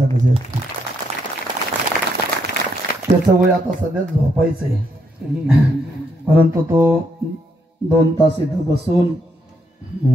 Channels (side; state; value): both; normal; correlation 0.76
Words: गजर. त्याचं वय आता सध्या झोपायचंय, परंतु तो 2 तास इथं बसून